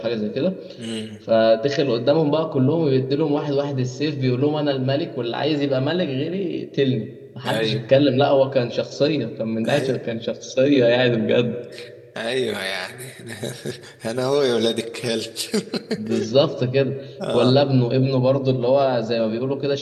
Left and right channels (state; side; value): identical; both; correlation 1.00